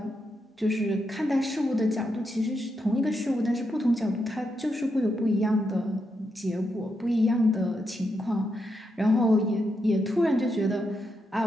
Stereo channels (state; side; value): normal; both; correlation 0.83